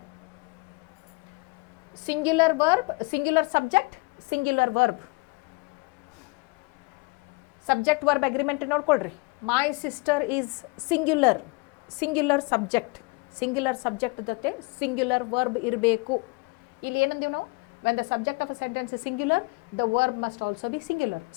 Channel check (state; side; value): quieter; right; 28.0 dB